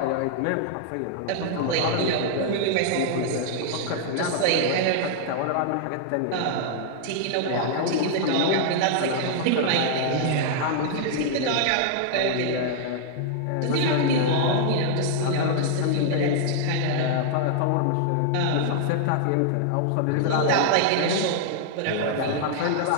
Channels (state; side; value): different; both; correlation -0.01